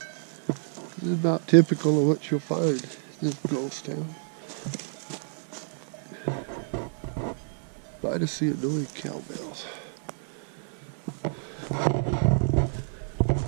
is about typical of what you'll find in this ghost town. Glad to see annoying cowbells.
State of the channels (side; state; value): left; silent; 59 dB below the other